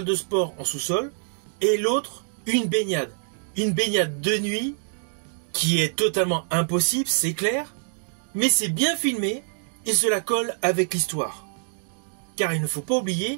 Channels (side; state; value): left; silent; digital silence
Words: de sport en sous-sol, et l'autre, une baignade. Une baignade de nuit qui est totalement impossible, c'est clair, mais c'est bien filmé et cela colle avec l'histoire. Car il ne faut pas oublier